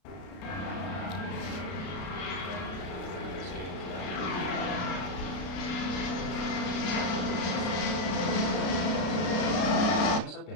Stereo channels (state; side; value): late; right; 33 ms